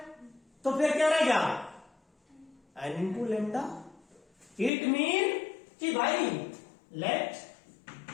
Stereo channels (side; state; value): right; drops out; at 4.7 s